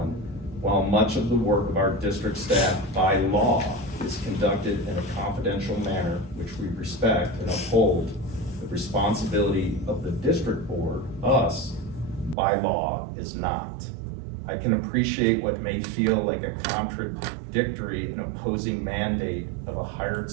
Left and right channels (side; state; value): left; drops out; at 12.4 s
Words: while much of the work of our district staff by law is conducted in a confidential manner, which we respect and uphold, the responsibility of the district board, us, by law, is not. I can appreciate what may feel like a contradictory and opposing mandate of a hired